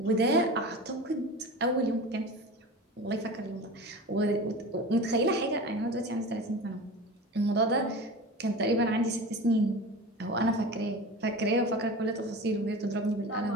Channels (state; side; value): normal; both; correlation 0.32